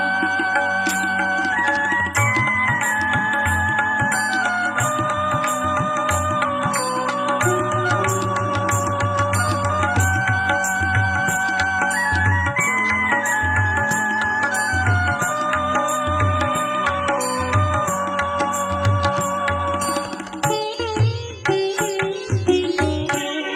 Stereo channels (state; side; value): identical; both; correlation 1.00